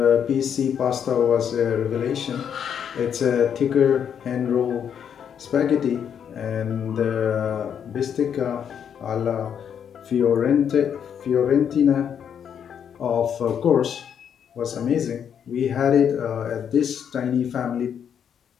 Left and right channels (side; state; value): right; quieter; 8.2 dB